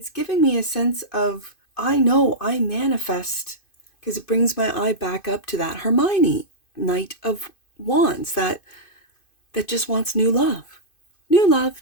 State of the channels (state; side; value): late; right; 2.5 ms